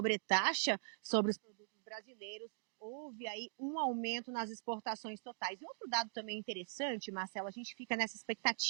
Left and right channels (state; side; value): silent; left; digital silence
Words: sobre os produtos brasileiros, houve aí um aumento nas exportações totais. E outro dado também interessante, Marcelo, a gente fica nessa